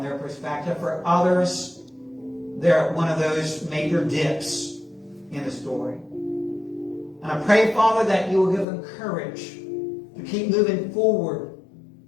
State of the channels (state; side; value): drops out; right; at 8.7 s